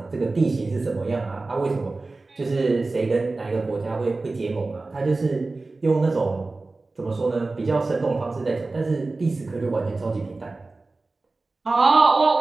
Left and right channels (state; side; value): quieter; left; 3.4 dB